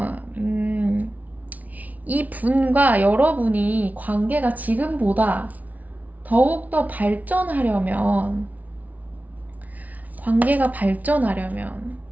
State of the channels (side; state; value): left; late; 0.073 ms